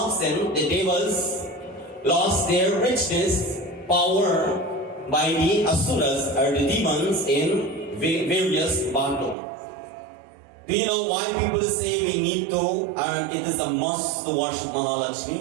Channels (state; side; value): drops out; left; at 9.3 s